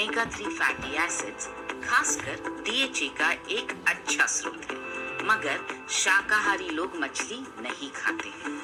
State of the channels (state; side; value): identical; both; correlation 1.00